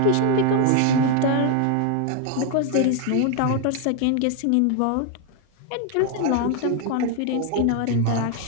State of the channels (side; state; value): both; different; correlation 0.01